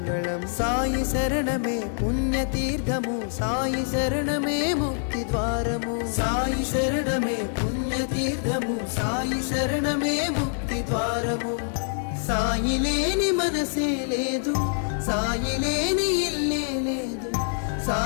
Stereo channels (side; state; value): right; silent; digital silence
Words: సాయి శరణమే పుణ్యతీర్థము, సాయి శరణమే ముక్తి ద్వారము. సాయి శరణమే పుణ్యతీర్థము, సాయి శరణమే ముక్తి ద్వారము. సాయి లేని మనసే లేదు, సాయి లేని ఇల్లే లేదు,